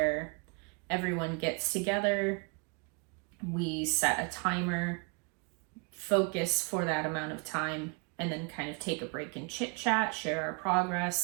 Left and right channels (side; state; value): left; quieter; 33.7 dB